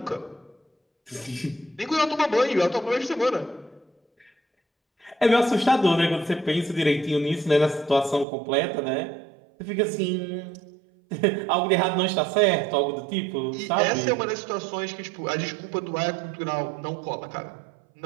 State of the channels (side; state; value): left; drops out; at 8.2 s